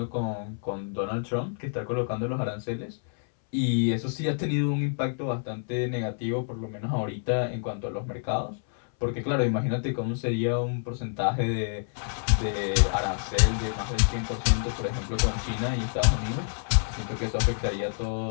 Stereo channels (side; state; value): right; silent; 60 dB below the other